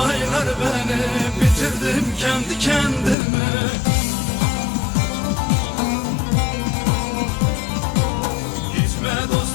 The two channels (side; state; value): right; drops out; at 3.2 s